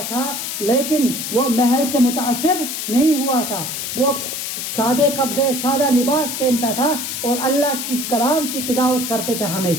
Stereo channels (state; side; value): noise; left; hiss, 4 dB below the sound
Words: تھا، لیکن وہ محل سے متاثر نہیں ہوا تھا. وہ سادے کپڑے، سادہ لباس پہنتا تھا اور اللہ کی کلام کی تلاوت کرتے تھے.